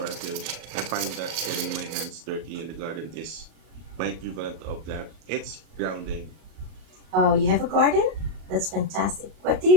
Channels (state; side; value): late; left; 38 ms